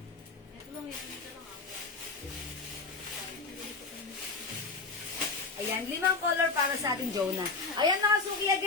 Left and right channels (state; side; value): quieter; right; 4.2 dB